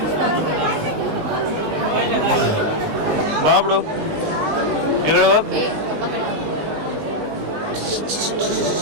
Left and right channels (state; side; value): late; left; 19 ms